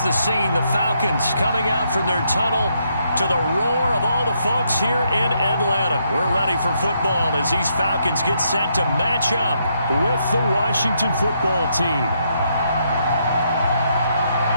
the scene. The Falcons coming out from their tunnel to the roar of all the folks here in Atlanta. We're ready for football as these Falcons get set to match up with the Washington football team.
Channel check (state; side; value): inverted; both; correlation -0.76